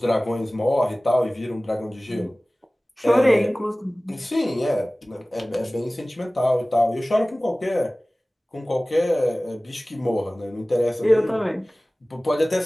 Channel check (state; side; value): normal; both; correlation 0.98